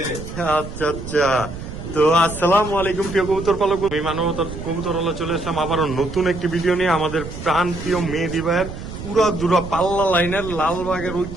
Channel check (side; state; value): right; noise; rumble, 10 dB below the sound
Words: আচ্ছা। তো আসসালামু আলাইকুম প্রিয় কবুতর পালক, আমি মানবতার কবুতর হলে চলে আসলাম আবারও নতুন একটি ভিডিও নিয়ে আমাদের প্রাণ প্রিয় মেহেদি ভাইয়ের পুরা পাল্লা লাইনের লালবাগের